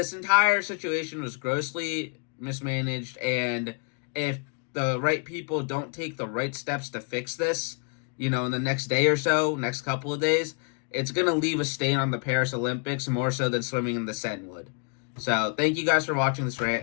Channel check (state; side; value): quieter; right; 39.0 dB